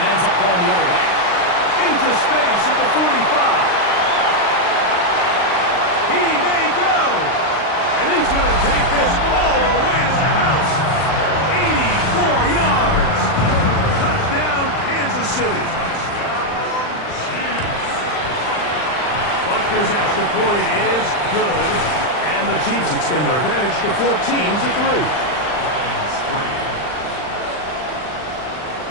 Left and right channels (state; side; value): late; right; 39 ms